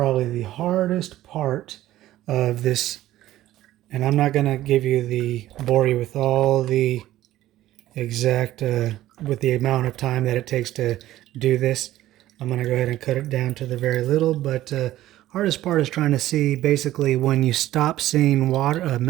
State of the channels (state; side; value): quieter; left; 14.5 dB